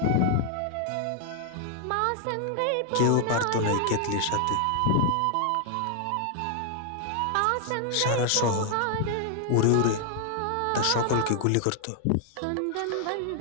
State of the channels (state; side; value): different; both; correlation 0.00